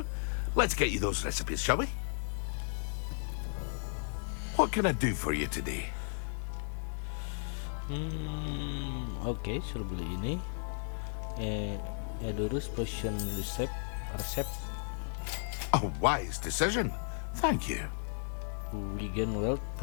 let's get you those recipes, shall we? What can I do for you today? Oke, suruh beli ini. Edurus potion resep. A wise decision. Thank you. Wigan Wealth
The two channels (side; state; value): right; silent; 55 dB below the other